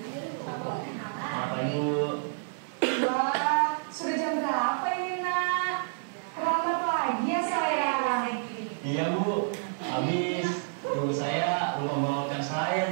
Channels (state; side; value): silent; left; digital silence